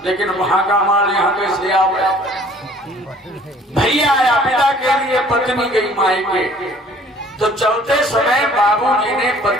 लेकिन वहां का माल यहाँ कैसे आ गया। भैया आया पिता के लिए, पत्नी गई मायके। तो चलते समय बाबूजी ने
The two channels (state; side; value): normal; both; correlation 0.54